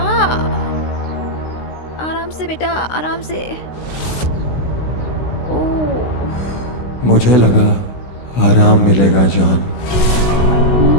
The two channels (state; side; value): late; right; 16 ms